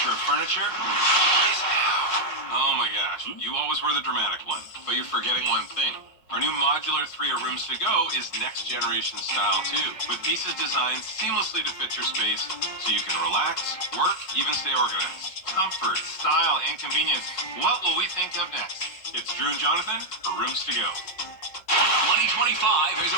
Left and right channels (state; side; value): late; right; 5.4 ms